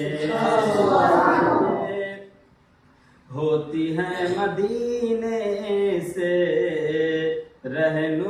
ہوتی ہے مدینے سے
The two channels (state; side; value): identical; both; correlation 1.00